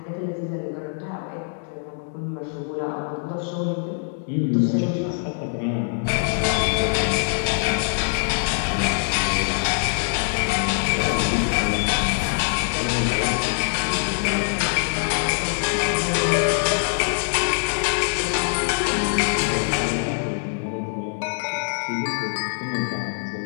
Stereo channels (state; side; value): silent; right; digital silence